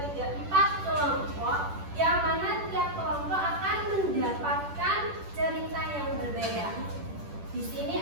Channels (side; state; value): left; late; 10 ms